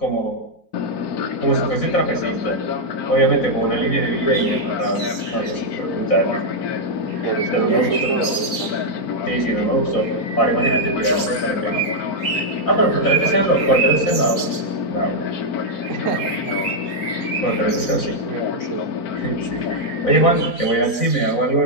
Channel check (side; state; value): right; late; 3.8 ms